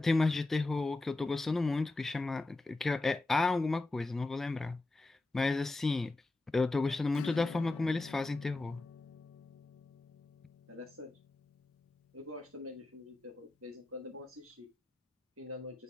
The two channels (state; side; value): quieter; right; 3.1 dB